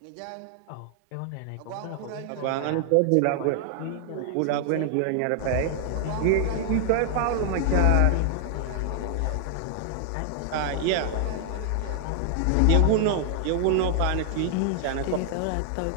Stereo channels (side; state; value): both; different; correlation 0.00